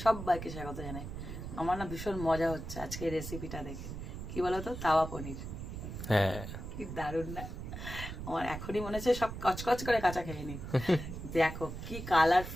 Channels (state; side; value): noise; right; rumble, 8 dB below the sound